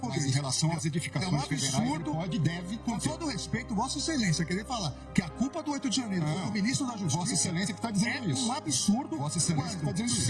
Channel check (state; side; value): identical; both; correlation 1.00